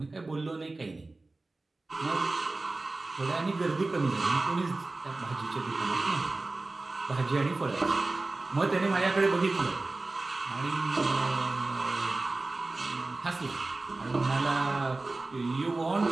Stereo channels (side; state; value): left; quieter; 3.2 dB